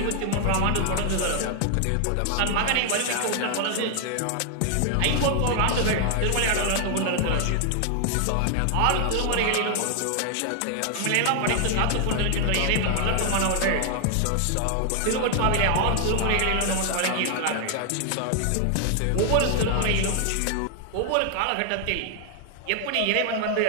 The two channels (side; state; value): both; different; correlation 0.00